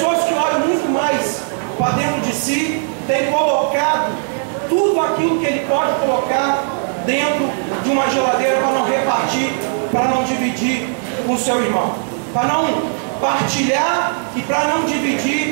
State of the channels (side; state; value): left; silent; digital silence